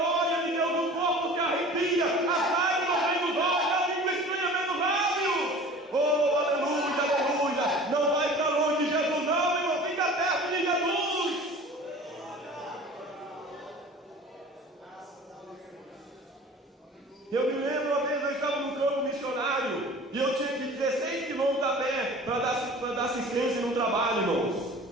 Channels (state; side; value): normal; both; correlation 0.42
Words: de Deus, o corpo se arrepia, as lágrimas vêm nos olhos, a língua estranha vem nos lábios, oh aleluia, aleluia. Não vai para longe de Jesus não, irmão, fica perto de Jesus. Eu me lembro uma vez, eu estava no campo missionário e eu tinha que ir 16 quilômetros a pé para dar assistência no trabalho, irmãos.